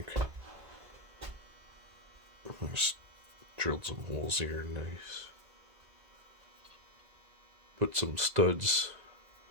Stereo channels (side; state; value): left; late; 2.0 ms